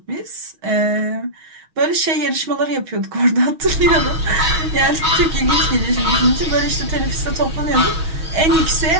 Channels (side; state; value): left; late; 6.3 ms